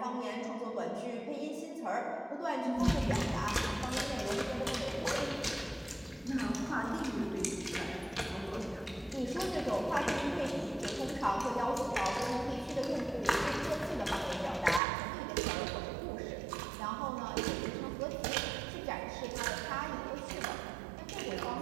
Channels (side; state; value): left; drops out; at 14.8 s